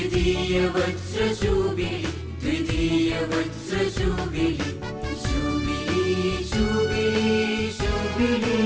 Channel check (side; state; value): both; identical; correlation 1.00